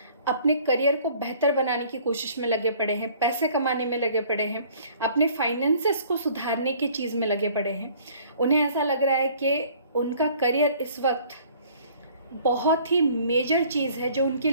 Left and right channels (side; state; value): both; inverted; correlation -0.54